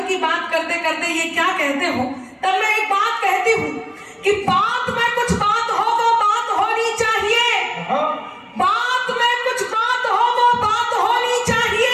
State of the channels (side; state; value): both; identical; correlation 1.00